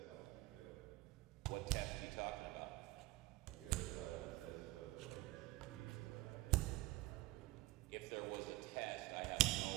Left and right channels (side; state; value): left; quieter; 19.7 dB